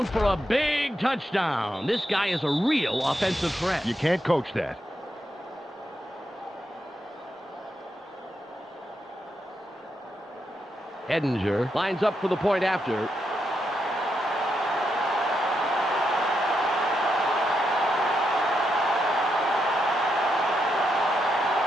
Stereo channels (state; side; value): normal; both; correlation 0.82